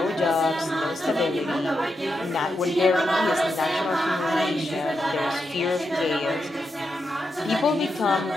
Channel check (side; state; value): both; normal; correlation 0.85